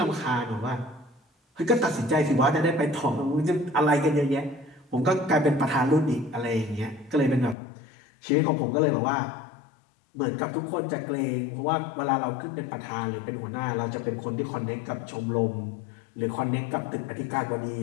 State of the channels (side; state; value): right; drops out; at 7.6 s